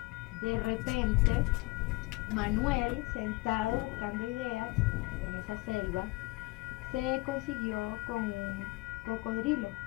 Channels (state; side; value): quieter; right; 22.4 dB